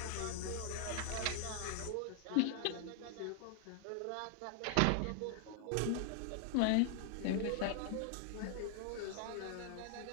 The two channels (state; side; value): different; both; correlation 0.00